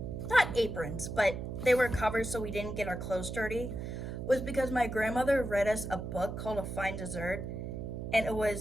not aprons, but they were covered so we didn't get our clothes dirty, was because my grandmother read us a book called A Fine Dessert. And it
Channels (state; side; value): noise; right; hum, 6 dB below the sound